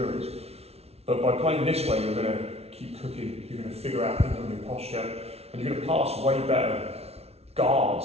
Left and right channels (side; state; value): left; late; 0.30 ms